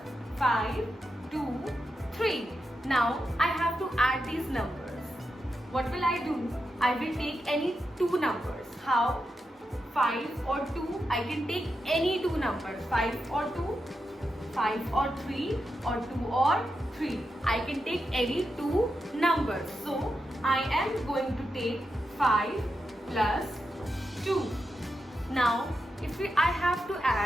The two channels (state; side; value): normal; both; correlation 0.87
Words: 5, 2, 3. Now I have to add these numbers. What will I do? I will take any two numbers. How? 5 or 2. I can take any two numbers. 5 or 2, 5 or 3, or 2 or 3. I can take any two numbers. So I am going to take 5 plus 2. Now if I have to